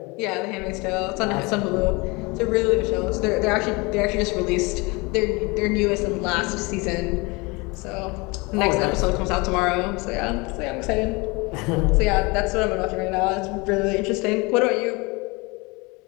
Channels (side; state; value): right; quieter; 26.3 dB